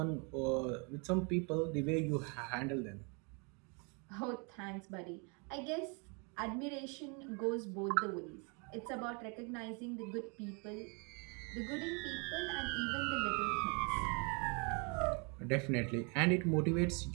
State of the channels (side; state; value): left; quieter; 33.9 dB